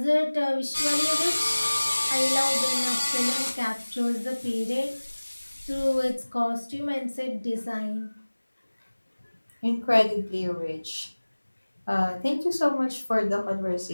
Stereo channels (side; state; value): both; inverted; correlation -1.00